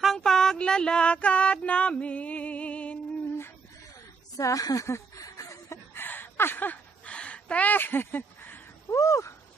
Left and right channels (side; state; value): left; quieter; 4.9 dB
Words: ang paglalakad namin sa te. Woo!